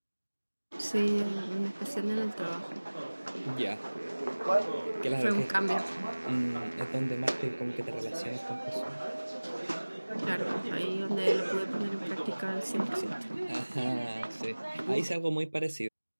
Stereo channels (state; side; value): inverted; both; correlation -1.00